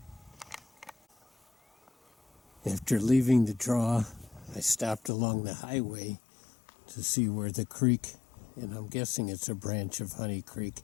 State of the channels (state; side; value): drops out; right; at 5.1 s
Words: After leaving the draw, I stopped along the highway to see where the creek, and I'm guessing it's a branch of Honey Creek,